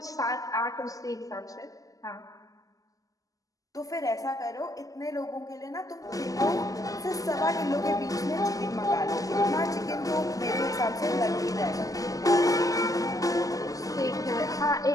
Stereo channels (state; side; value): late; right; 0.17 ms